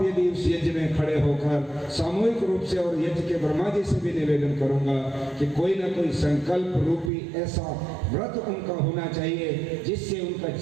यदि उस यज्ञ में खड़े होकर सामूहिक रूप से, और यज्ञ के ब्रह्मा जी से भी निवेदन करूंगा कि कोई ना कोई संकल्प रूपी ऐसा व्रत उनका होना चाहिए जिससे उनका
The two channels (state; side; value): drops out; left; at 7.1 s